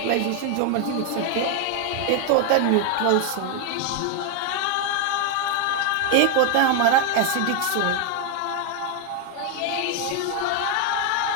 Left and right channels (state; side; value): different; both; correlation 0.01